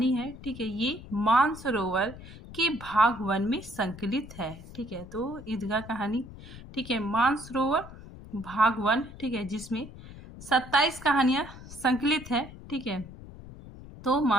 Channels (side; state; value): left; noise; rumble, 16 dB below the sound